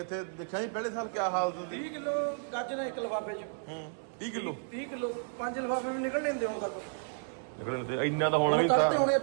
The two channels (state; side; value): silent; left; digital silence